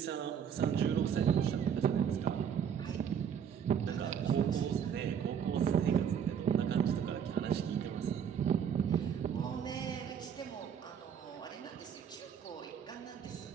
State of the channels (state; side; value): quieter; left; 8.0 dB